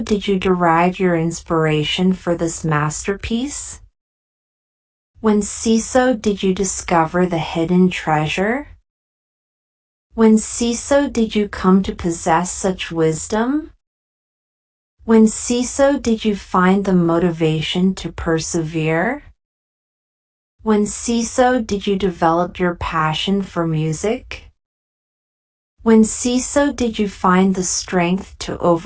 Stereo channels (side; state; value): both; identical; correlation 1.00